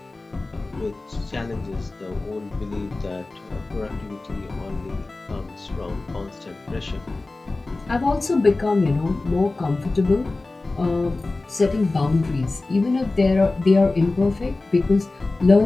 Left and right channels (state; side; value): quieter; right; 3.2 dB